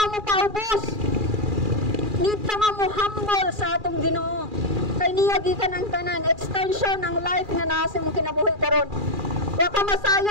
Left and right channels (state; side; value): late; left; 2.4 ms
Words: mo paubos. Need ka nga mo humble sa atong Ginoo. kay niya gikan ang tanan, extension ng life nga naa sa imong kinabuhi karon. Wa ka